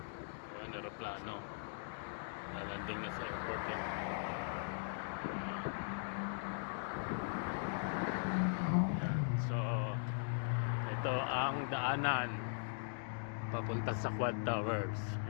ayan, aeroplano nalanding na sa airport eh. Ayan, so ito ang daanan papunta sa Quad Towers.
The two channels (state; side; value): silent; right; digital silence